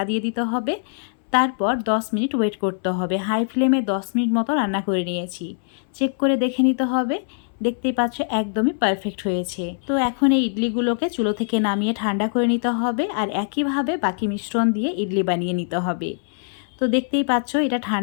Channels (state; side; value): silent; right; 64 dB below the other